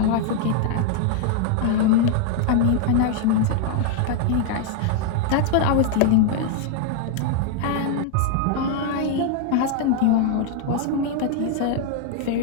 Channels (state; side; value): different; both; correlation 0.00